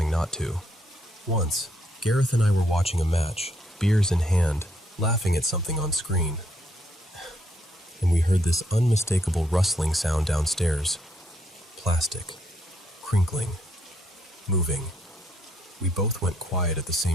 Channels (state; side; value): normal; both; correlation 0.73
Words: not to. Once, Gareth and I were watching a match, beers in hand, laughing at something on screen. And we heard this unmistakable rustling sound downstairs. Plastic. Crinkling. Moving. We both went quiet at the